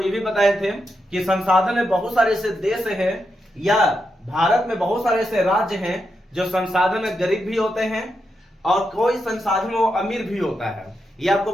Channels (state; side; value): normal; both; correlation 0.85